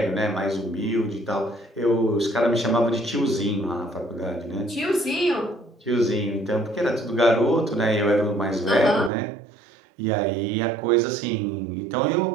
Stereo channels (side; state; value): left; drops out; at 9.1 s